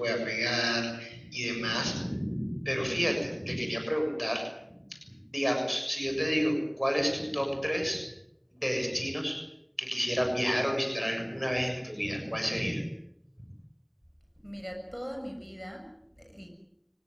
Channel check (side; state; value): both; identical; correlation 1.00